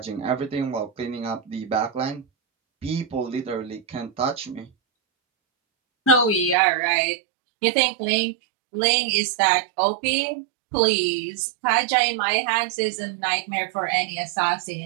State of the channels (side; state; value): left; drops out; at 6.6 s